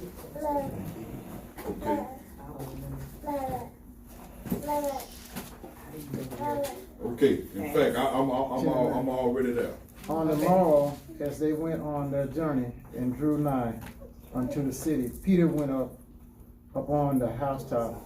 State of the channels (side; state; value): both; identical; correlation 1.00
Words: Okay. In fact, I'm already there. On the morrow, as they went on their journey and drew nigh unto the city, Peter went up upon the housetop